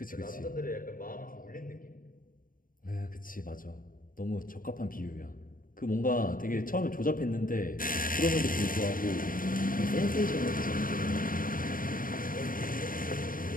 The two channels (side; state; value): right; late; 0.40 ms